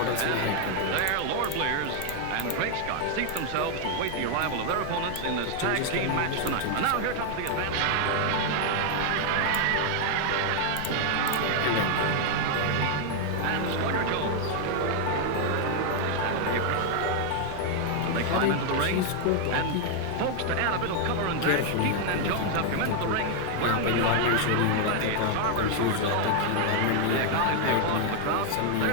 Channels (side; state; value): both; different; correlation 0.00